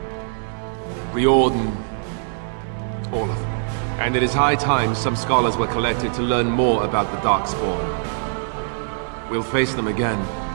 Riordan, all of them. And it is high time some scholars were collected to learn more about the Darkspawn. We'll face them again,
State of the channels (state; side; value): silent; left; 59 dB below the other